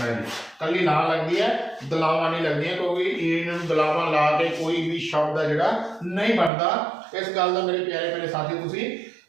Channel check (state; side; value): drops out; left; at 6.5 s